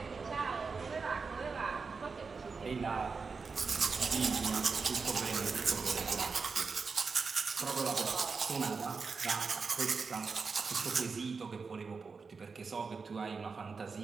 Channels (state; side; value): quieter; left; 4.8 dB